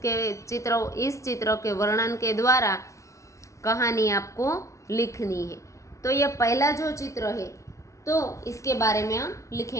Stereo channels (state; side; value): late; right; 0.15 ms